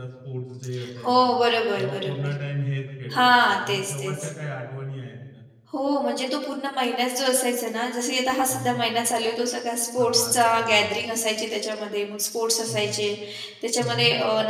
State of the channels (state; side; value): identical; both; correlation 1.00